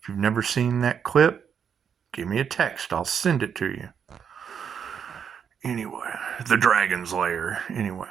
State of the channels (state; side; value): quieter; left; 7.5 dB